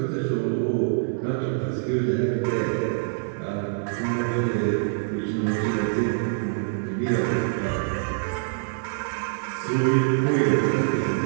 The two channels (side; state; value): left; silent; digital silence